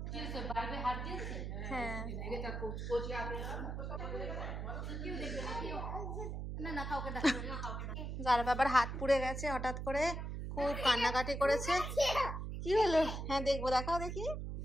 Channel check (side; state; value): right; noise; hum, 5 dB below the sound